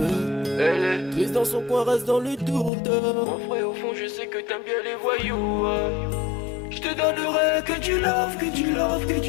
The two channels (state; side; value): drops out; right; at 2.7 s